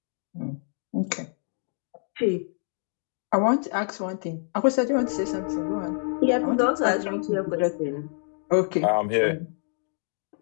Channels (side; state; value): right; silent; digital silence